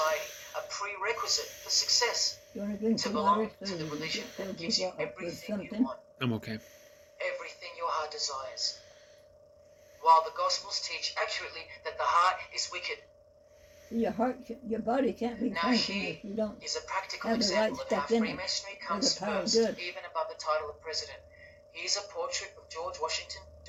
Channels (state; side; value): identical; both; correlation 1.00